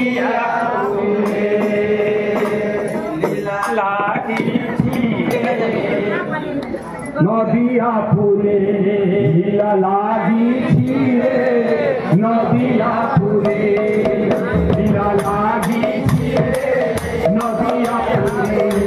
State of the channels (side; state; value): both; identical; correlation 1.00